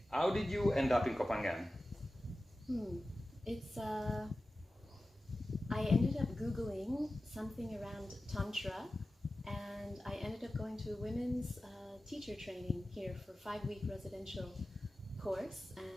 how did you end up in Copenhagen? I ended up Googling something around Tantra, and I ended up going to a women's teacher training here for a 5-week residential course,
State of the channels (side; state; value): both; normal; correlation 0.95